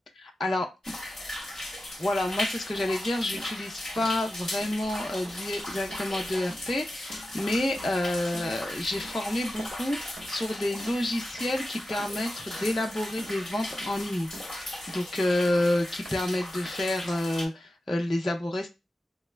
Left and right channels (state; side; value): normal; both; correlation 0.92